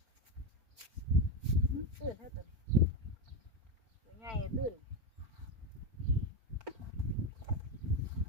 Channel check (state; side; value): late; left; 4.4 ms